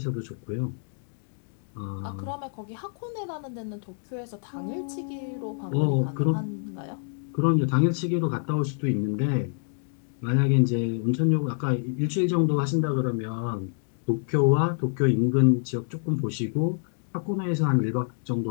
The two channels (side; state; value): right; silent; digital silence